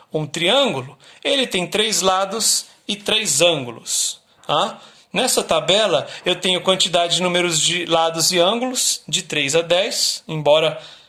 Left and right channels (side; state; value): both; identical; correlation 1.00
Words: um triângulo, ele tem 3 lados e 3 ângulos. Tá? Nessa tabela, eu tenho quantidade de números de lados e ângulos de 3 a 10, embora